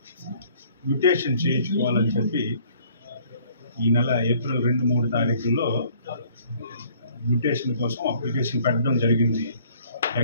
మ్యూటేషన్ చేయించుకోవాలని చెప్పి ఈ నెల ఏప్రిల్ 2-3 తారీఖుల్లో మ్యూటేషన్ కోసం అప్లికేషన్ పెట్టడం జరిగింది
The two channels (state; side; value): inverted; both; correlation -0.58